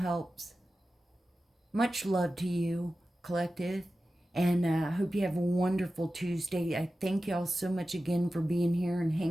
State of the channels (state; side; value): normal; both; correlation 0.94